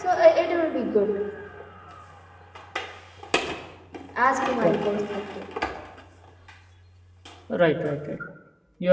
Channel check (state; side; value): identical; both; correlation 1.00